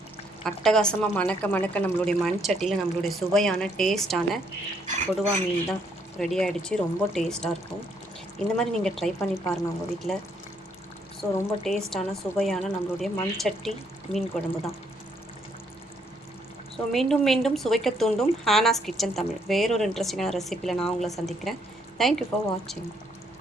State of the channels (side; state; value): both; normal; correlation 0.70